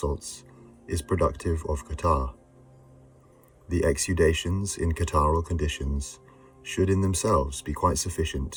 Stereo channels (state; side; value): identical; both; correlation 1.00